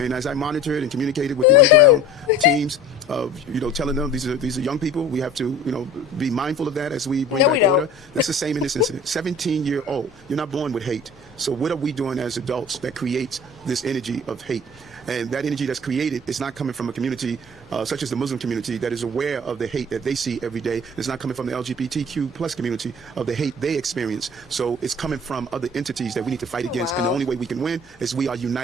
as I monitored and communicated with the underground teams, telling them these are young people, we have to, be mindful of that as we bring back order. That's the same in this incident. 17-year-old, you're not born with hate. So what are we doing as adults that creates this energy of hate? And that energy that's created is not coming from a community such as the Muslim community that is aware of the hate that they see every day. It's not coming from the LGBTQ plus community of the hate they experience. So it's coming from other entities that we need to fight against. And the only way we can win is we are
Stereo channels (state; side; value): normal; both; correlation 0.43